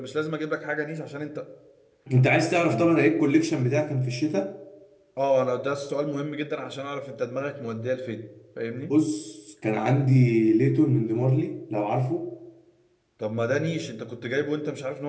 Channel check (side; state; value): both; identical; correlation 1.00